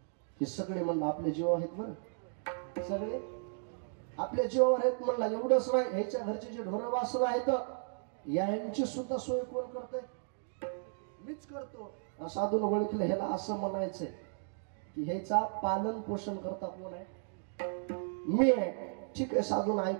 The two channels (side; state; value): left; silent; digital silence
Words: हे सगळे म्हणलं आपल्या जीवावर आहेत. बरं, सगळे आपल्या जीवावर आहेत. म्हणला, एवढंच नाही, ह्याच्या घरचे जे ढोरं वासरं आहेत यांची सुद्धा सोय कोण करतंय? मीच करतो. साधून ओळखलं. ह्याला असं म्हणायचंय की ह्याचा पालन पोषण करता कोण आहे? मी आहे. ठीक आहे, साधून